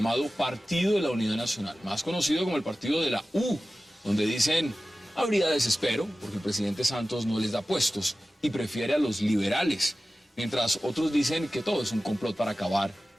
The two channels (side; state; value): both; normal; correlation 0.95